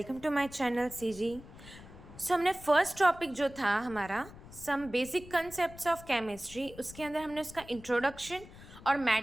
to my channel CG. हमने first topic जो था हमारा some basic concepts of chemistry, उसके अंदर हमने उसका इंट्रोडक्शन और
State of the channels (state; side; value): noise; left; rumble, 17 dB below the sound